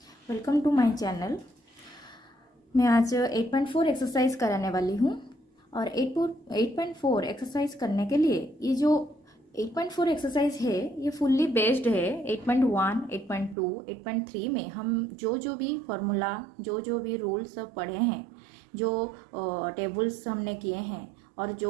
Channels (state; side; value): drops out; left; at 13.6 s